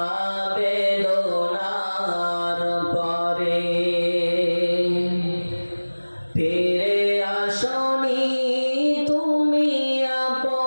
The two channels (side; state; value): both; inverted; correlation -1.00